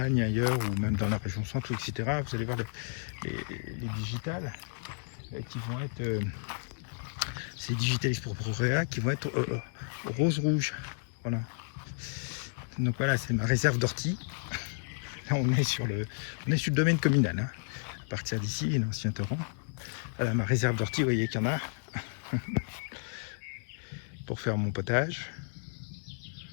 ailleurs, ou même dans la région centre, etc., vous allez voir les digitales qui vont être... c'est Digitalis purpurea qui vont être rose-rouge. Voilà. Donc voilà, c'est ma réserve d'ortie. Là, on est sur le domaine communal. Hein. À partir d'ici, l'ancien torrent. Voilà, ma réserve d'ortie, vous voyez qu'il y en a. Pour faire mon potage.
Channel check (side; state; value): right; silent; digital silence